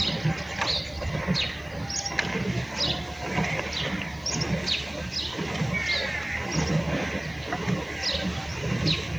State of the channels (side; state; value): left; noise; hiss, 27 dB below the sound